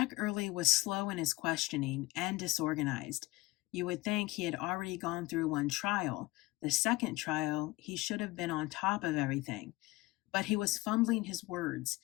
Early was slow in his questioning and disorganized. You would think he had already gone through one trial. The second trial, he should have been on top of everything. But he was fumbling his words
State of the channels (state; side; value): quieter; right; 20.5 dB